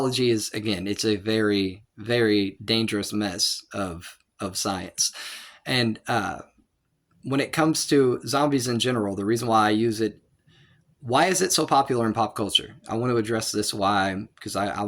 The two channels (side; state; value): both; identical; correlation 1.00